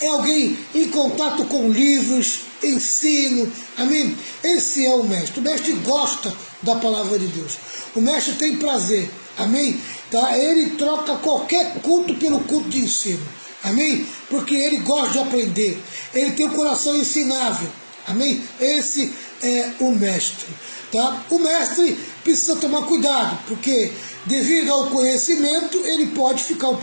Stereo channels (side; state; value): both; inverted; correlation -1.00